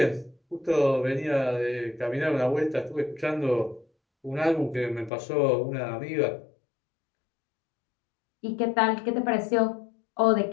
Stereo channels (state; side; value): drops out; right; at 5.1 s